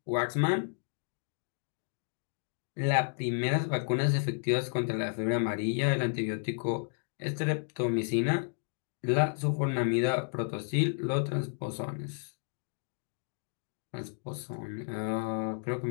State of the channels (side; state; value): right; silent; digital silence